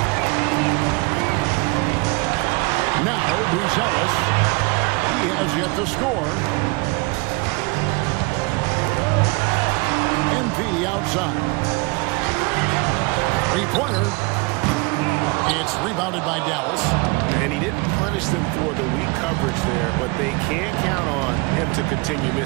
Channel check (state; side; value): quieter; left; 27.4 dB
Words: Now Buzelis. He has yet to score. MP outside. 3-pointer. It's rebounded by Dallas. And he didn't punish them for the weak coverage there, but they can't count on him to continue